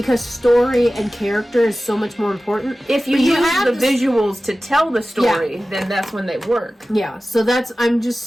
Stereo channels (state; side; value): normal; both; correlation 0.96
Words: story and character is so much more important. If you use the visuals to tell the story, then that's when they work. Yeah, so I'm